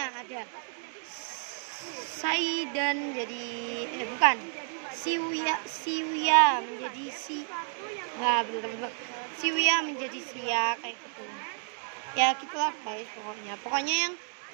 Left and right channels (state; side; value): silent; left; 57 dB below the other